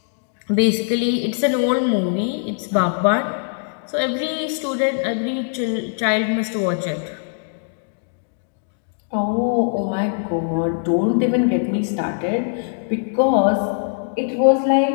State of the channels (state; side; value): silent; right; digital silence